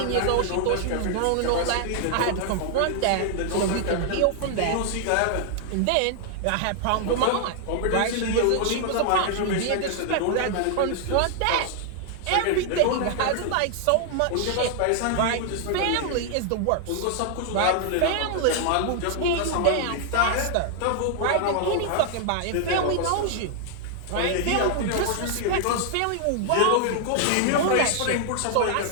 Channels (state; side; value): different; both; correlation 0.00